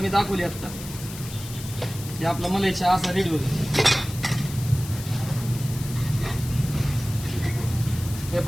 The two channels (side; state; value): left; noise; hiss, 13 dB below the sound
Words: मी दाखवली आता. हे आपला मलाई चहा असा रेडी होतो. हे